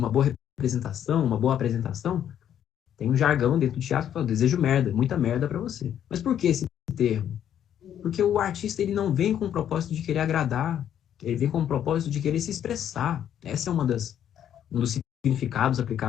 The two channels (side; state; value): right; quieter; 10.0 dB